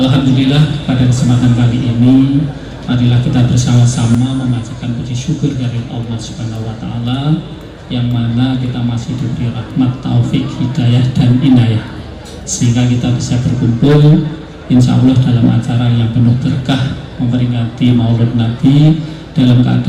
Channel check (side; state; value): both; identical; correlation 1.00